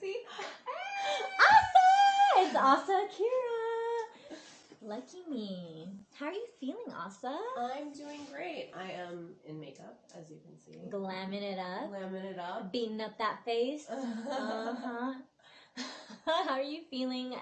Asa! It's Asa Akira! Lucky me. How are you feeling, Asa? I'm doing great. I am in makeup, as you can see. Glamming it up. Glamming it up. Beating up that face. Uh-huh. How are you feeling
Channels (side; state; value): both; identical; correlation 1.00